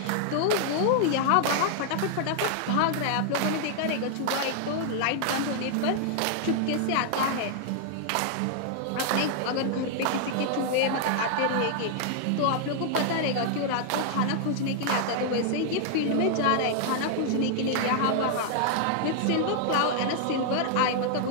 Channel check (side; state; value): both; different; correlation 0.00